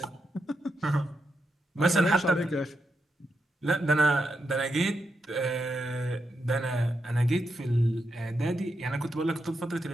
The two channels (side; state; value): both; normal; correlation 0.84